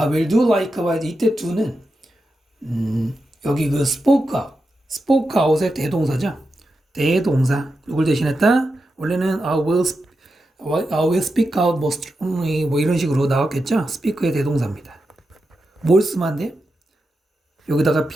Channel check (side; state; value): both; normal; correlation 0.89